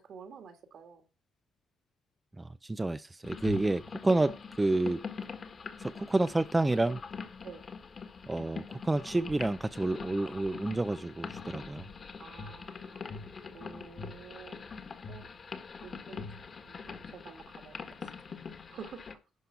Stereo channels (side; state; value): both; normal; correlation 0.96